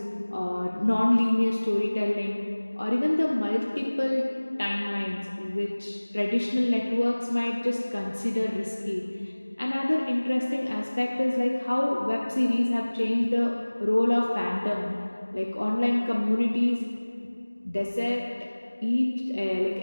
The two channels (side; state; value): both; inverted; correlation -1.00